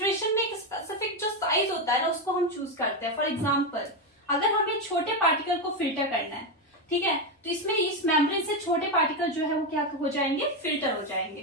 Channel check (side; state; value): both; normal; correlation 0.09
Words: में एक स्पेसिफिक जो साइज होता है ना उसको हम चूज करते हैं। फॉर एग्जाम्पल अगर हमें छोटे पार्टिकल को फिल्टर करना है, ठीक है, तो इसमें इस मेम्ब्रेन से छोटे पार्टिकल जो है वो क्या हो जाएंगे, फिल्टर हो